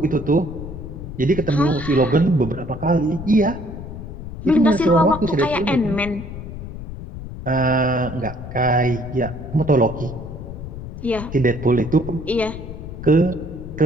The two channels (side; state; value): left; noise; rumble, 10 dB below the sound